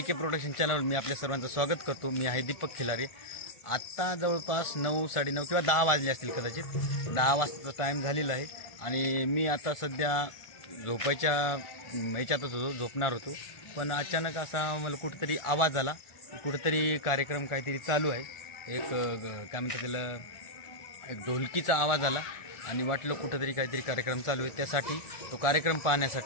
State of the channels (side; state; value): right; late; 1.4 ms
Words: प्रोडक्शन चॅनलवर मी आपल्या सर्वांचं स्वागत करतो। मी आहे दीपक खिलारे। आता जवळपास 9, 9:30 किंवा 10 वाजले असतील, कदाचित 10 वाजताचा टाइम झालेला आहे आणि मी आता सध्या झोपायच्या याच्यातच होतो, झोपणार होतो। पण अचानक असा मला कुठेतरी आवाज आला, कुठेतरी कार्यक्रम काहीतरी चालू आहे। एक काय म्हणतात त्याला, एक ढोलकीचा आवाज आला आणि वाटलं कुठेतरी काहीतरी कार्यक्रम चालू आहे। त्यासाठी तो कार्यक्रम